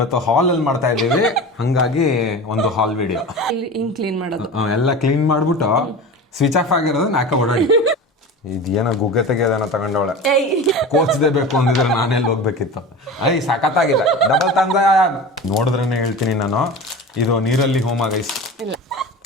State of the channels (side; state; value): both; normal; correlation 0.31